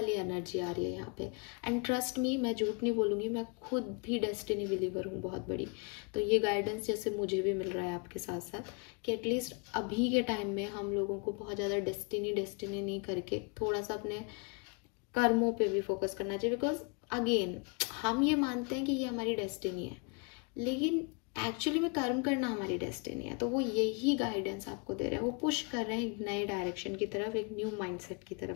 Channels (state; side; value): quieter; right; 33.1 dB